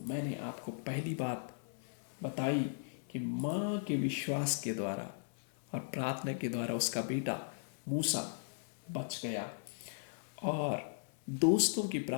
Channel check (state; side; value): silent; right; 53 dB below the other